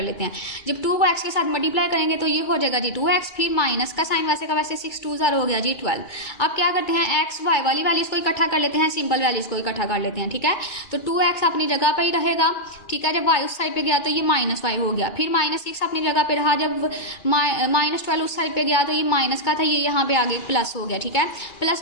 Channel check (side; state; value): right; late; 2.4 ms